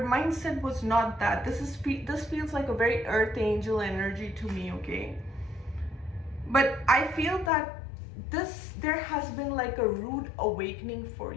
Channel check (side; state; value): right; drops out; at 7.5 s